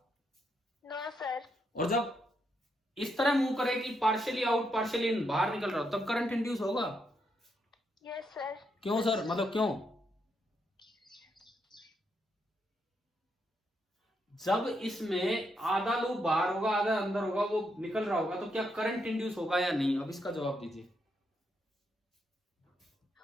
नो सर। और जब इस तरह मूव करे कि पार्शियली आउट पार्शियली इन, बाहर निकल रहा हो, तब करंट इंड्यूस होगा। Yes sir. क्यों सर, मतलब क्यों? जब इसमें आधा लूप बाहर होगा आधा अंदर होगा, वो निकल रहा होगा, तो क्या करंट इंड्यूस होगा या नहीं? अब इसका जवाब दीजिए।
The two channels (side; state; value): both; normal; correlation 0.79